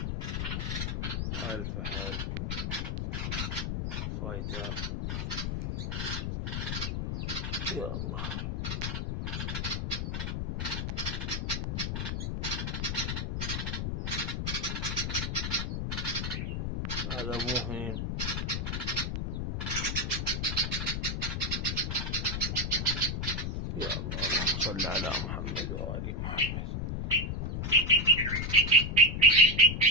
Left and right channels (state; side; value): noise; left; rumble, 2 dB below the sound